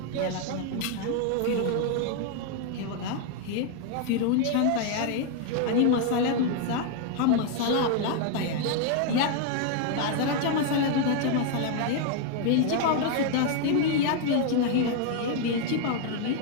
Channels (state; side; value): different; both; correlation 0.00